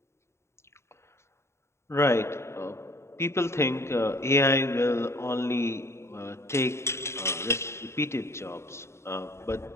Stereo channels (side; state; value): right; late; 0.13 ms